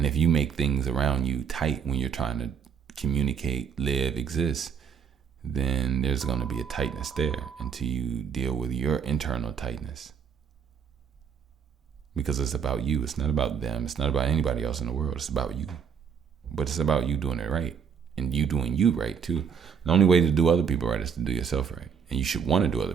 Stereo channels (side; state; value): left; quieter; 6.9 dB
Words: if you make things around you tight when you're trying to communicate, live, exist, then there's going to be a tightness there until you deal with your internal tightness. Because it's about you. It's not about them. It's not about anybody else in the world. It's about you. But it's about you doing it right. And you doing you right, too. The only way to do other people right is to do yourself right. And you should want to do other